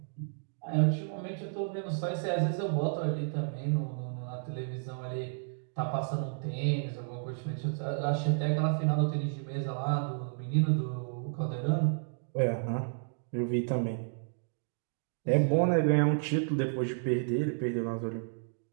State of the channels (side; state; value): left; silent; digital silence